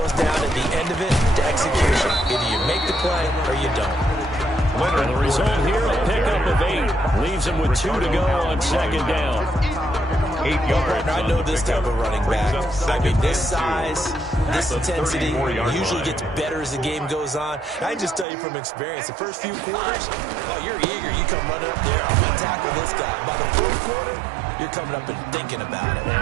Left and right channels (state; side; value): drops out; left; at 18.2 s